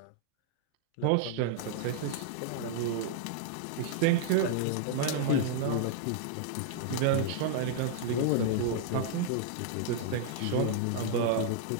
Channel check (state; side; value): different; both; correlation -0.01